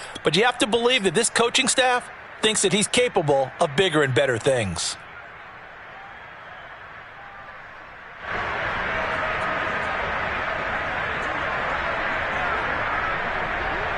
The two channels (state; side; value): identical; both; correlation 1.00